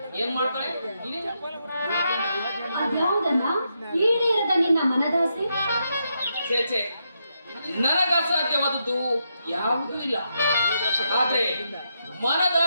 ಏನ್ ಮಾಡ್ತಾಳೆ? ಅದ್ಯಾವುದನ್ನ ಈಡೇರದ ನಿನ್ನ ಮನದಾಸೆ? ಚೇಚೆ, ನನಗ ಅಸಾಧ್ಯವಾದದ್ದು ಯಾವುದೂ ಇಲ್ಲ. ಆದ್ರೆ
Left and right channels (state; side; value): inverted; both; correlation -0.82